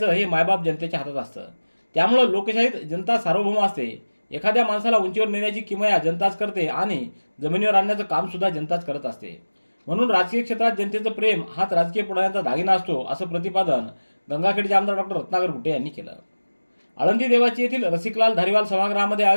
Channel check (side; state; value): both; inverted; correlation -1.00